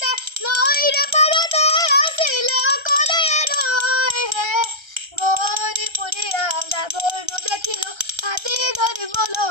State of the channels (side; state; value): left; late; 1.3 ms